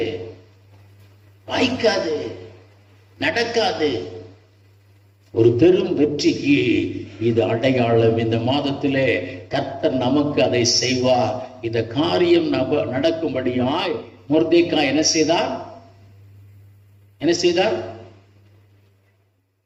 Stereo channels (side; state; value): both; identical; correlation 1.00